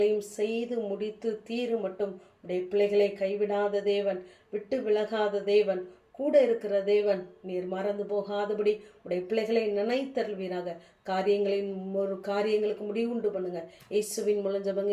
செய்து முடித்து தீரு மட்டும் உடைய பிள்ளைகளை கைவிடாத தேவன், விட்டு விலகாத தேவன், கூட இருக்கிற தேவன், நீர் மறந்து போகாதபடி உடைய பிள்ளைகளை நினைத்தருள்வீராக. காரியங்களுக்கு முடிவுண்டு பண்ணுங்க. இயேசுவின் மூலம் ஜெபங்க,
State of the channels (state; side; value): identical; both; correlation 1.00